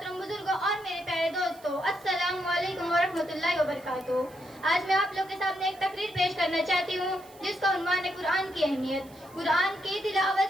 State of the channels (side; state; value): right; noise; hiss, 25 dB below the sound